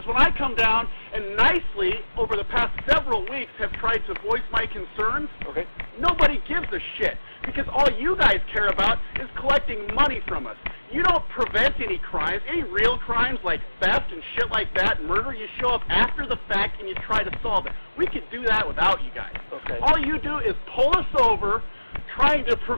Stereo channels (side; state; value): both; inverted; correlation -1.00